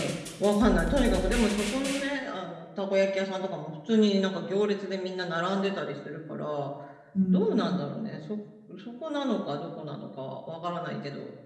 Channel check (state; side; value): identical; both; correlation 1.00